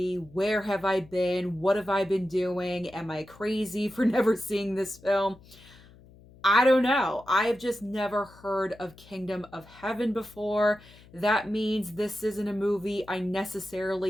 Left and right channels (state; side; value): noise; left; hum, 24 dB below the sound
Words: Where have I been? What have I been doing? Am I crazy for never seeing this film? I don't know. I have just never heard of Kingdom of Heaven before. That means this isn't a movie I